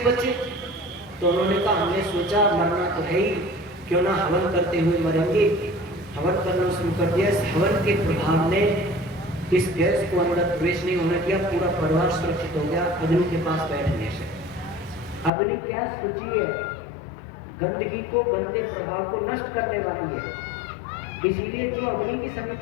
बचे? तो उन्होंने कहा हमने सोचा मरना तो है ही, क्यों ना हवन करते हुए मरेंगे। हवन करना शुरू कर दिया। इस हवन के प्रभाव ने इस गैस को अंदर प्रवेश नहीं होने दिया, पूरा परिवार सुरक्षित हो गया अग्नि के पास बैठने से। अग्नि क्या सूची है, गंदगी को, गंदे प्रभाव को नष्ट करने वाली है। इसीलिए जो अग्नि की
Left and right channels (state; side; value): drops out; right; at 15.3 s